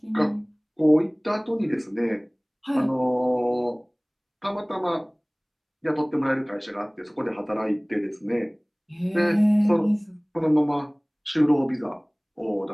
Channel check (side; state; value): both; identical; correlation 1.00